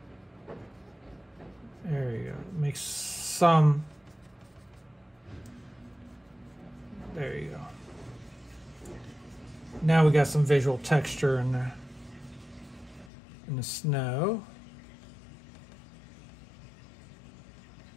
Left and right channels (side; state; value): right; drops out; at 13.1 s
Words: There make some. There you go. Now we got some visual texture in the snow.